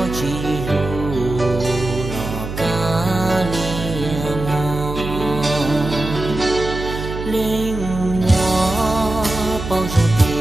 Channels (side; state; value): right; noise; hum, 7 dB below the sound